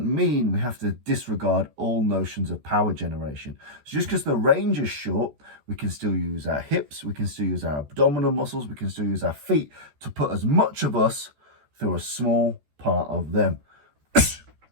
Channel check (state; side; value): late; left; 14 ms